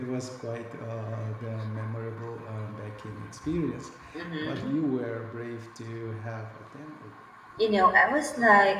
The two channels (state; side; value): identical; both; correlation 1.00